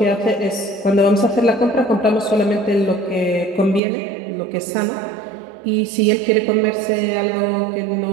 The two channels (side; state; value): left; drops out; at 3.8 s